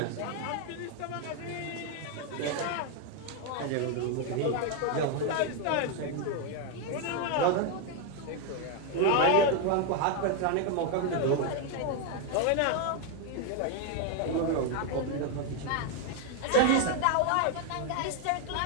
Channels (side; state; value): both; different; correlation 0.01